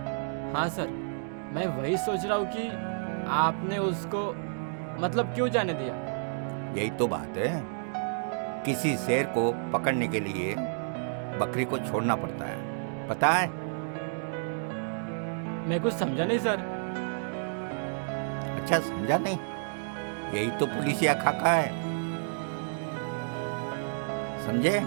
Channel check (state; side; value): silent; left; digital silence